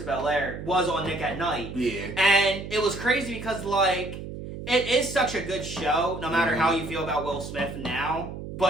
of Bel Air, was on Nick at Night. Yeah. And it was crazy because, like, it is such a good show, no matter how you feel about Will Smith now.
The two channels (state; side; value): noise; right; hum, 9 dB below the sound